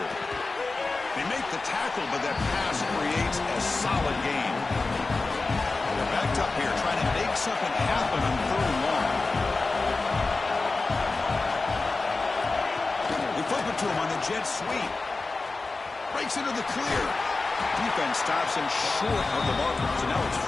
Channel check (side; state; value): right; quieter; 3.6 dB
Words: They make the tackle, but that pass creates a solid gain. They're backed up here, trying to make something happen on 3rd and long. They flip it to him on the jet sweep. Breaks into the clear. Defense stops him short of the marker, so now it's